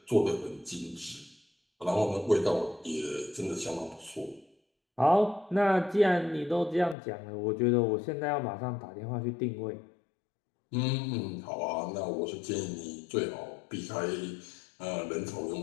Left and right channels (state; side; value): drops out; right; at 7.0 s